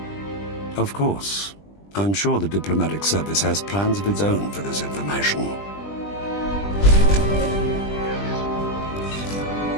Of course. I'm sure the diplomatic service has plans of its own for this information.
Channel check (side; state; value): right; late; 20 ms